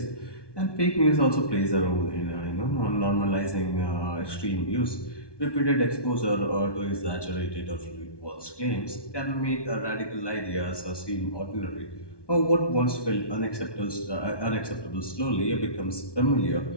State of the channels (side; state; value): right; late; 1.2 ms